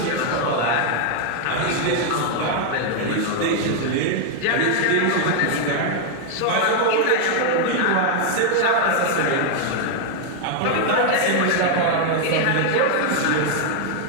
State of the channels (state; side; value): different; both; correlation 0.00